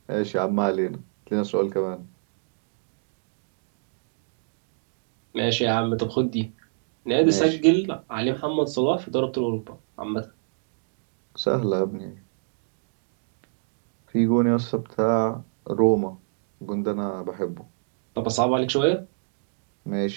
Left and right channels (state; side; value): silent; left; digital silence